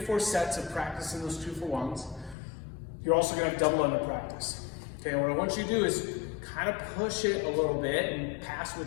sets of practicing those 2-for-1s. You're also going to have double under practice. Okay, and what I want you to do is kind of push it a little bit and pass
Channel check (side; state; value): right; drops out; at 2.4 s